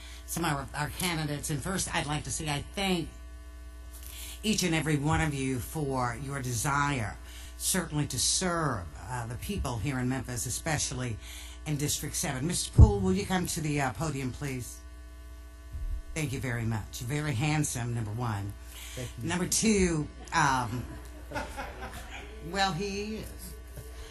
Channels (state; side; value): identical; both; correlation 1.00